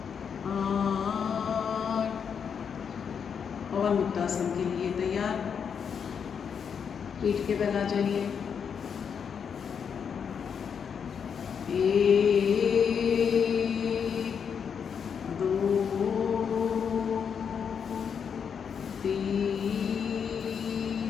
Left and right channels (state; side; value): quieter; right; 7.0 dB